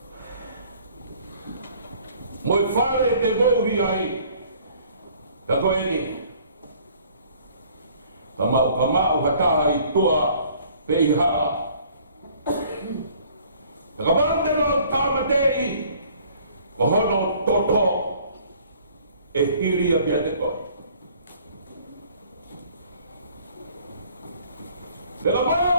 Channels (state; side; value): inverted; both; correlation -0.56